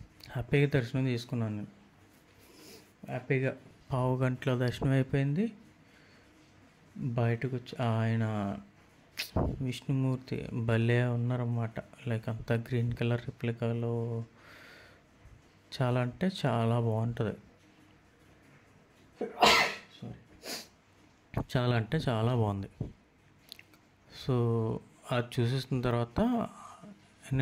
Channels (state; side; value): identical; both; correlation 1.00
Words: హ్యాపీగా దర్శనం తీసుకున్నాను నేను. హ్యాపీగా 1/2 గంటలో దర్శనం అయిపోయింది. బయటకు వచ్చి ఆయన విష్ణుమూర్తి భలే ఉన్నారన్నమాట. లైక్ అంతా గ్రీన్ కలర్ రిప్లికాలో చాలా అంటే చాలా బాగుంటుంది. చాలా అంటే చాలా బాగుంది. సో అది చూసేసిన తర్వాత